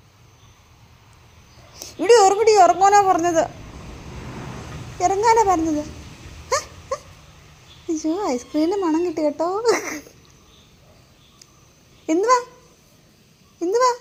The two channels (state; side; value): identical; both; correlation 1.00